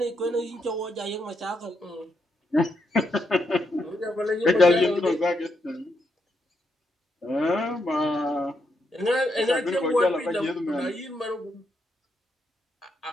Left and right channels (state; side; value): normal; both; correlation 0.79